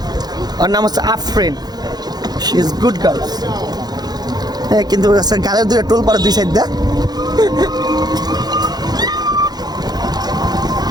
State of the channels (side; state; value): left; late; 0.19 ms